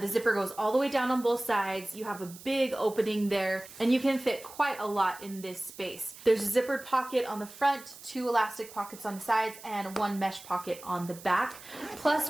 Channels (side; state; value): right; noise; hiss, 17 dB below the sound